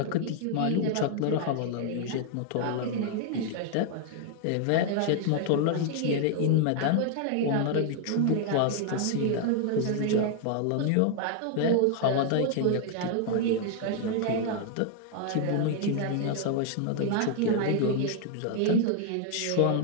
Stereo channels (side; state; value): both; different; correlation 0.00